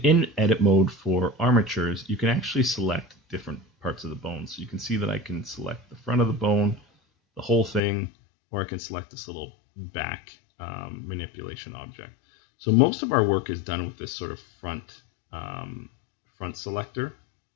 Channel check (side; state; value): right; drops out; at 7.8 s